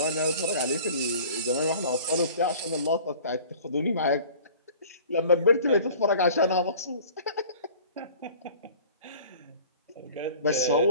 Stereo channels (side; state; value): both; inverted; correlation -0.46